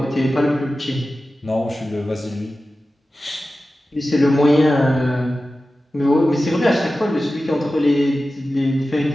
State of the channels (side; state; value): both; normal; correlation 0.94